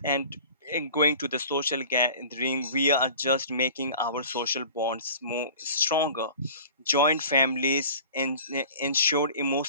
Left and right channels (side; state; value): both; inverted; correlation -0.43